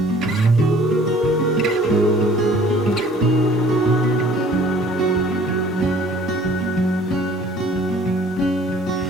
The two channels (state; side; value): normal; both; correlation 0.53